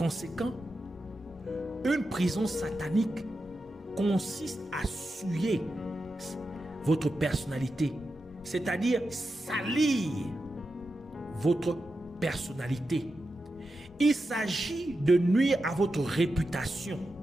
une prison satanique consiste à souiller votre personnalité, c'est-à-dire salir votre personnalité. Il s'agit de nuire à votre réputation.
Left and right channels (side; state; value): both; normal; correlation 0.89